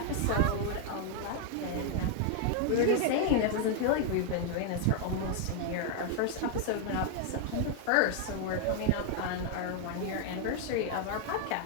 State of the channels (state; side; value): different; both; correlation 0.00